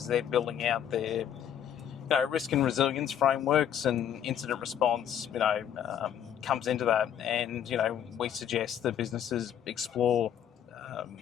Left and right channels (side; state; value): right; quieter; 9.5 dB